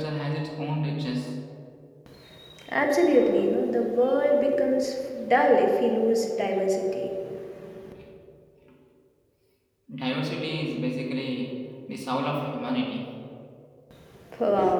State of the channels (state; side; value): identical; both; correlation 1.00